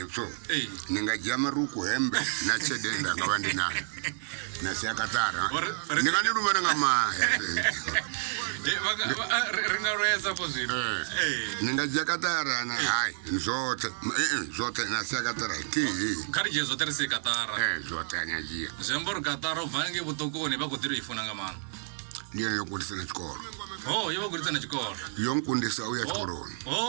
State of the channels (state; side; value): silent; left; digital silence